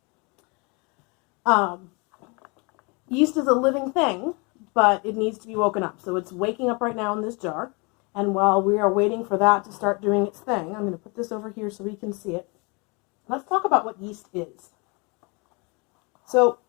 Yeast is a living thing, but it needs to be woken up. So it's waking up right now in this jar, and while we are waiting for that to start doing its thing, I'm going to put this over here so we can see it. Let's talk about what yeast is. So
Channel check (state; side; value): quieter; right; 30.2 dB